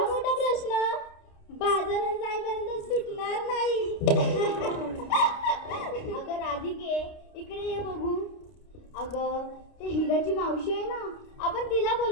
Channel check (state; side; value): late; right; 29 ms